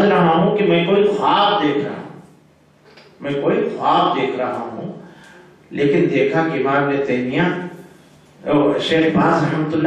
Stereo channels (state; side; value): identical; both; correlation 1.00